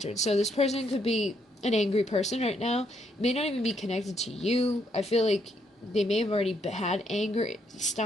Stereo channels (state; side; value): normal; both; correlation 0.74